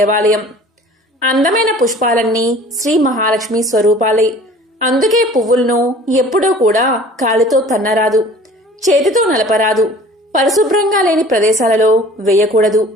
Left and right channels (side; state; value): both; normal; correlation 0.47